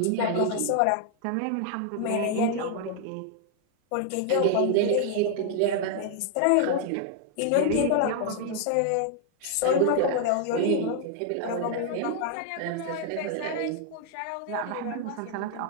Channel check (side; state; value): both; different; correlation 0.00